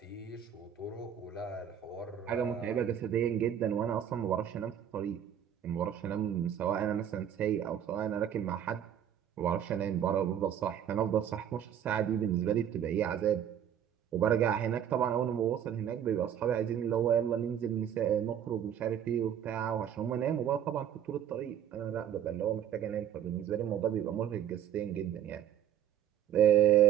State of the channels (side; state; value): left; quieter; 9.6 dB